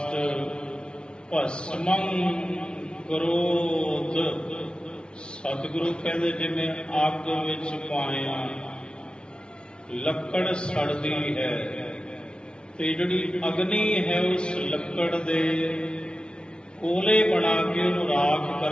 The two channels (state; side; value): late; right; 0.055 ms